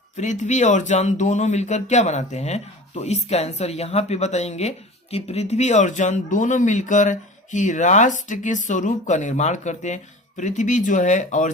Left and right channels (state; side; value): normal; both; correlation 0.38